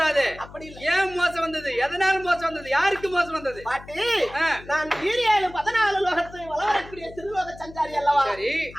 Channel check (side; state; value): left; noise; hum, 18 dB below the sound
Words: அப்படி இல்ல. ஏன் மோசம் வந்தது? எதனால மோசம் வந்தது? யாருக்கு மோசம் வந்தது? பாட்டி நான் 14 லோகத்தை வளரக்கூடிய திருலோக சஞ்சாரி அல்லவா? சரி.